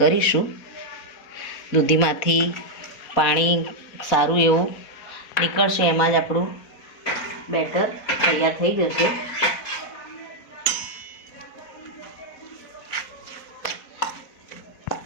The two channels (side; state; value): right; late; 4.4 ms